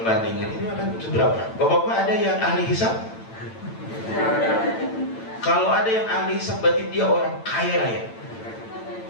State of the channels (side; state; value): right; late; 8.9 ms